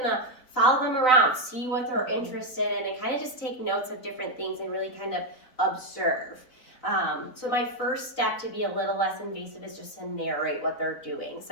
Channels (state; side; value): late; right; 3.9 ms